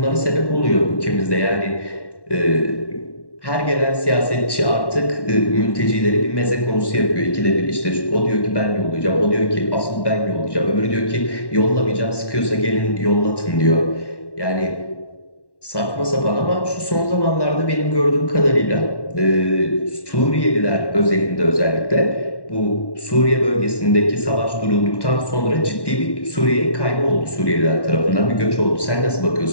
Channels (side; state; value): right; late; 1.1 ms